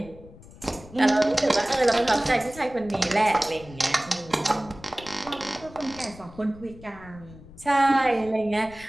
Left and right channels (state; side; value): noise; left; rumble, 19 dB below the sound